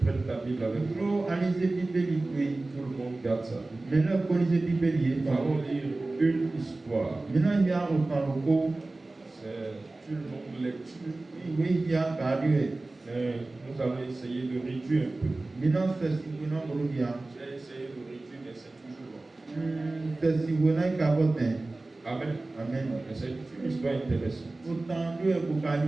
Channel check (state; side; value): quieter; left; 3.1 dB